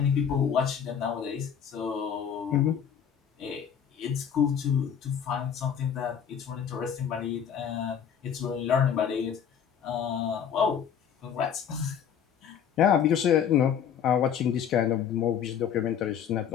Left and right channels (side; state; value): right; quieter; 8.2 dB